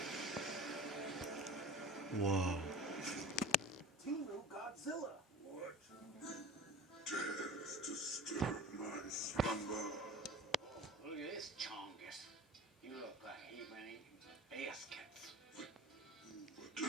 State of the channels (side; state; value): both; normal; correlation 0.39